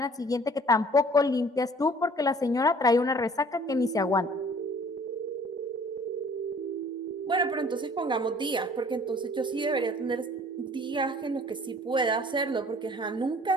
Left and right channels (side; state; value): both; normal; correlation 0.53